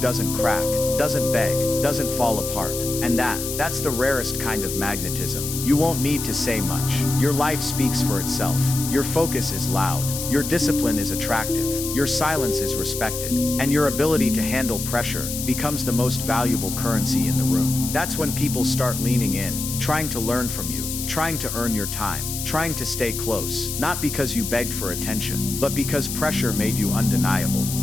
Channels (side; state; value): left; noise; hiss, 5 dB below the sound